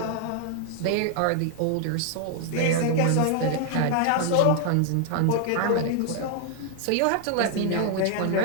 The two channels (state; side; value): different; both; correlation 0.00